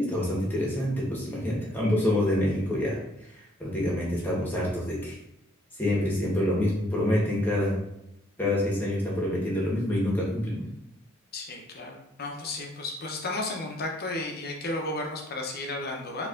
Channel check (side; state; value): both; normal; correlation 0.65